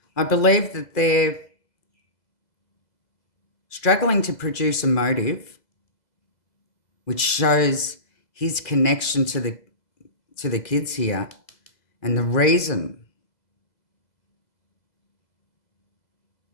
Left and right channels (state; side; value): late; right; 2.0 ms